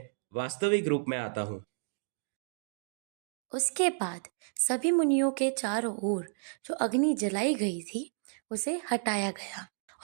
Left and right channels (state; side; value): silent; left; digital silence